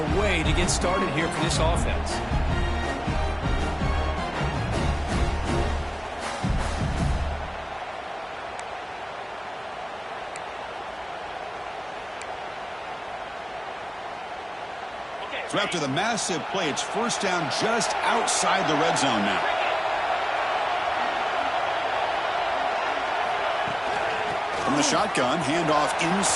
way to get started here for this offense. So after the massive play, it's first down just outside the red zone now. From the shotgun, handoff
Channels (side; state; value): both; identical; correlation 1.00